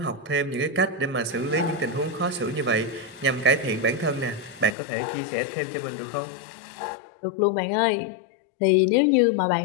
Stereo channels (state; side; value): drops out; right; at 4.8 s